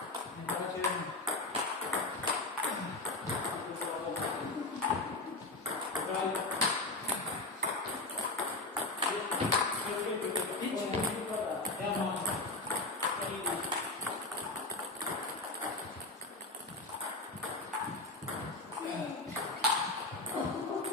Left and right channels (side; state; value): right; quieter; 3.0 dB